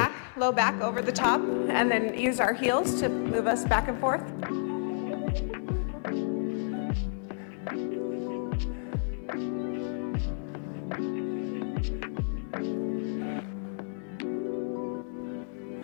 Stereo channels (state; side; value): silent; right; digital silence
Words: low back over the top and then use our heels to move us back and forth.